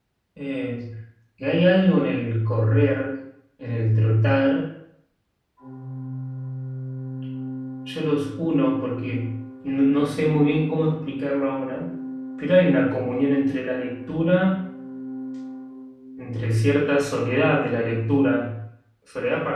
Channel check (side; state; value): both; identical; correlation 1.00